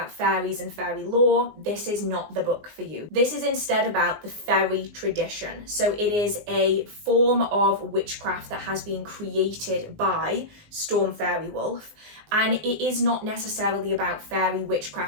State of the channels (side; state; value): left; late; 19 ms